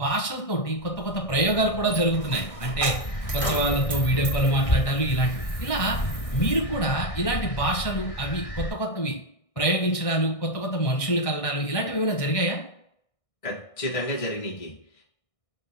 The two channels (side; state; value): right; late; 1.6 ms